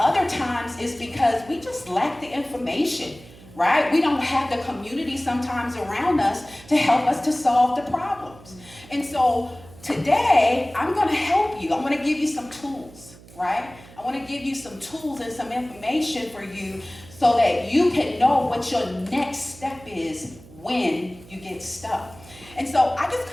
times it's because we just lack the information, right? We don't have the community sometimes around us to help us to solve the problems. And so today, I'm going to help you. I'm going to give you some tools, right? I want to give you some tools and some information for you so that you can know what your next step is when you get stuck. And so I just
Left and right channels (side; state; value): right; noise; hum, 21 dB below the sound